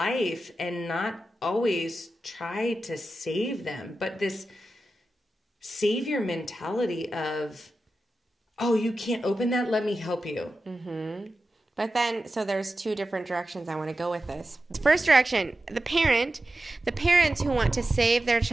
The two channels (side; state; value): both; normal; correlation 0.92